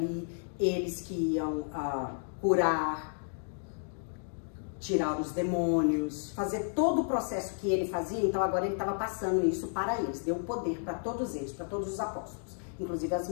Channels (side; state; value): right; silent; digital silence